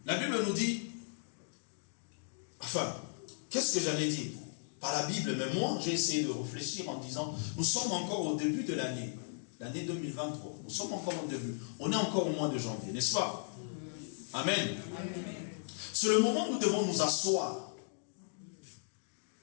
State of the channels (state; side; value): silent; right; digital silence